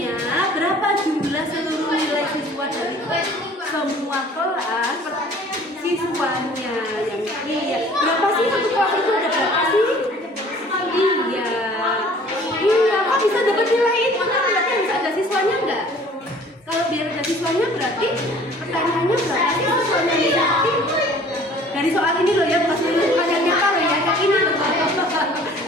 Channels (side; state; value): both; normal; correlation 0.51